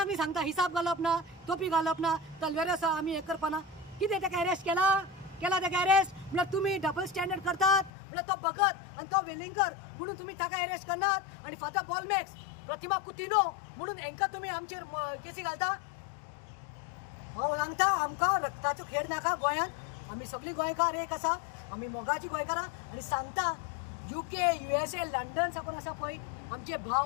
न्ही सांगता हिसाब घालप ना, टोपी घालप ना, तलवार आसा आमी हें करपाना. कितें ताका अरेस्ट केला ताका अरेस्ट? म्हळ्यार तुमी डबल स्टँडर्ड करतात. म्हळ्यार तो भगत आनी तो वेलिंगर म्हणून तुमी ताका अरेस्ट करनात. आनी फादर बॉलमॅक्स, प्रतिमा कुतिनो म्हणून हांकां तुमी आमचेर केसी घालता. हांव सांगता आमकां रक्ताचो खेळ नाका गोंयांत. आमी सगळीं गोंयकार एक आसा, आमी मोगाची गोंयकारां. आनी सांगता UK, USA, लंडन साकून आसा पळय आमचे भाव,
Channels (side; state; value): right; drops out; at 7.9 s